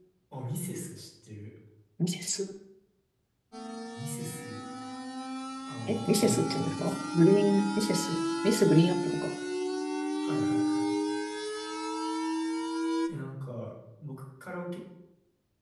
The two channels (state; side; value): identical; both; correlation 1.00